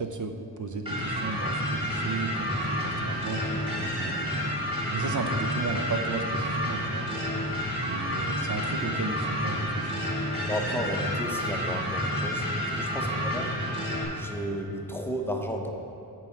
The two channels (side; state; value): both; normal; correlation 0.22